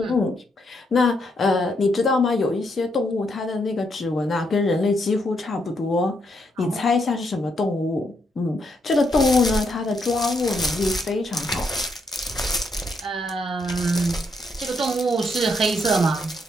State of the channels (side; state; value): both; normal; correlation 0.77